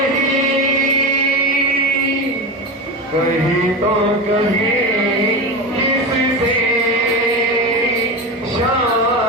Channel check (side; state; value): both; normal; correlation 0.21